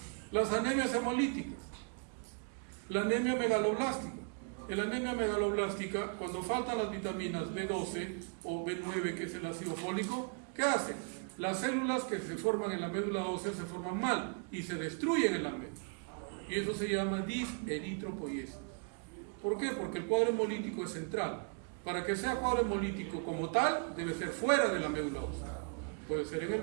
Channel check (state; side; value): quieter; left; 40.0 dB